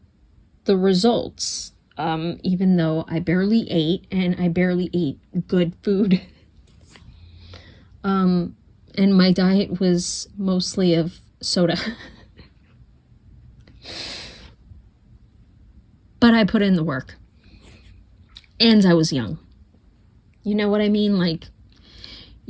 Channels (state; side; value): identical; both; correlation 1.00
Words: the results. Even though I barely ate, and I barely ate good food. And my diet was mostly of soda. But I put in the work. And I was young. You know what I mean? Like,